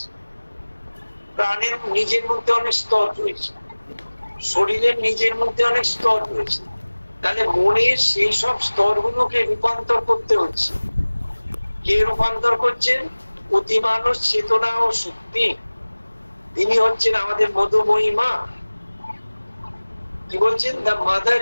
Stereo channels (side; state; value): both; inverted; correlation -1.00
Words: প্রাণের নিজের মধ্যে অনেক স্তর রয়েছে, শরীরের নিজের মধ্যে অনেক স্তর রয়েছে। তাহলে মনের সেই সব স্তরগুলোকে রূপান্তর করতে হচ্ছে। কে রূপান্তর করছেন? অতিমানস চেতনা ও শক্তি। তিনি হচ্ছেন আমাদের মধুময়ী মা। কি বলছেন? The mother